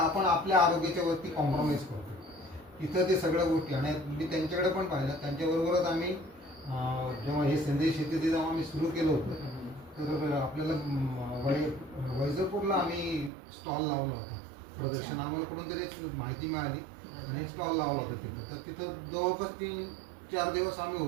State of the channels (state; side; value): drops out; left; at 13.3 s